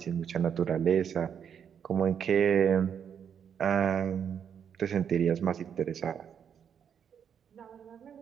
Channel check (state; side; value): quieter; left; 7.9 dB